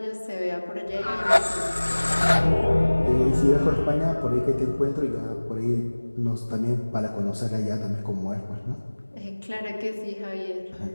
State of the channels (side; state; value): both; inverted; correlation -1.00